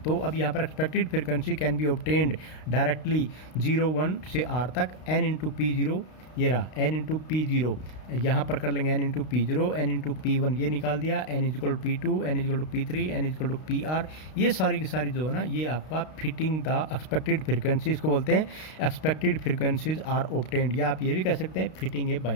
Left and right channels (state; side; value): late; right; 32 ms